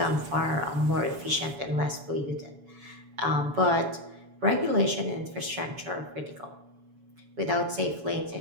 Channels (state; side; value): late; left; 7.1 ms